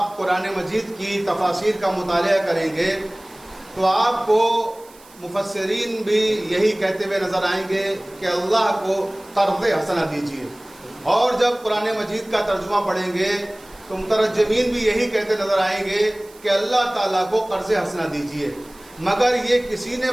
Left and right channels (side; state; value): right; noise; hiss, 25 dB below the sound